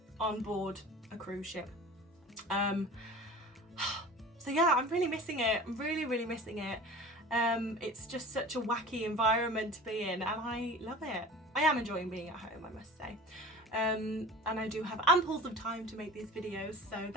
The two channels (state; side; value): normal; both; correlation 0.38